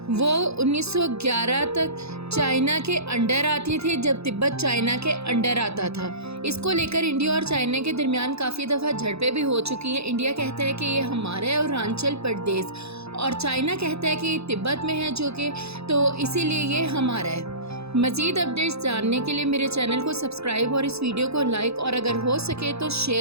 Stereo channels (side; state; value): left; late; 0.79 ms